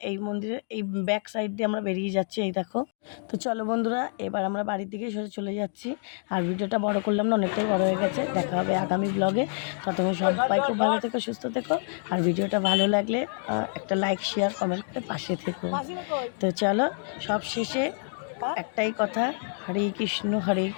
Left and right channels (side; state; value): right; silent; 55 dB below the other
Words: এই মন্দিরের এই ব্যাক সাইড দিয়ে আমরা বেরিয়ে যাচ্ছি, এই দেখো। তো চলো বন্ধুরা, এবার আমরা বাড়ির দিকে সোজা চলে যাচ্ছি। আর ভিডিওটা বড় করলাম না, অনেকটাই বড় হয়ে গেছে। দেখা হবে আগামী ব্লগে। ততক্ষণ সবাই খুব ভালো থেকো, সুস্থ থেকো। আর ভিডিওটা ভালো লাগলে একটা লাইক, শেয়ার, কমেন্ট করে পাশে থেকো। তো চলো, সব শেষে একটাই কথা, হরে কৃষ্ণ